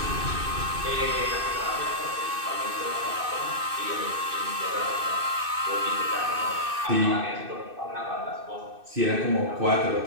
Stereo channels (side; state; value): left; late; 2.6 ms